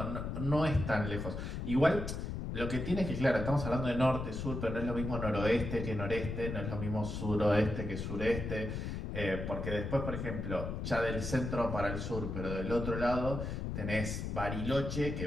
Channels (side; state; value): left; noise; rumble, 4 dB below the sound